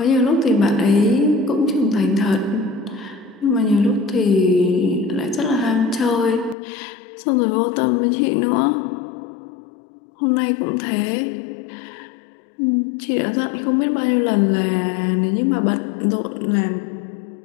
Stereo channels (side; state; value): right; drops out; at 6.6 s